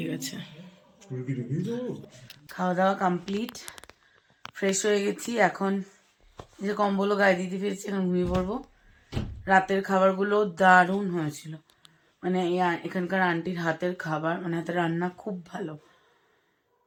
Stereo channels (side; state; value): both; identical; correlation 1.00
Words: গেছে। খাওয়া দাওয়া কমপ্লিট, ফ্রেশ হয়ে গেছি। এখন যে কম্বলও গায়ে দিতে পেরেছি, এখন ঘুমিয়ে পড়বো। রাতের খাবারগুলো দারুণ হয়েছিল, মানে এখানকার আন্টির হাতের খাবার, মানে হাতের রান্না খুব ভালো।